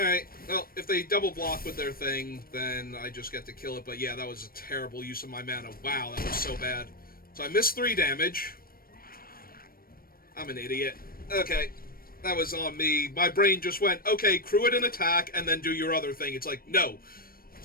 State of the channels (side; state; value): right; late; 0.43 ms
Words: well, if they double block with their thing, then I just get to kill it. But yeah, that was a terrible use of my mana. Wow, that was so bad. So I missed 3 damage. I'm an idiot. Okay, that was on me. My brain just went, okay, crew it an attack, and then do your other thing. It's like, no. You're